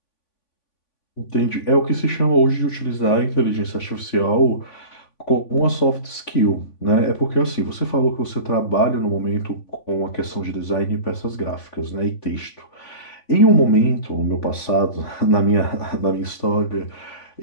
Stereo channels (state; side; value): late; right; 3.5 ms